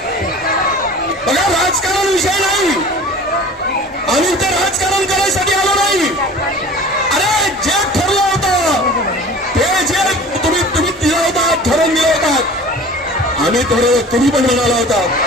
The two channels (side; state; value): both; normal; correlation 0.42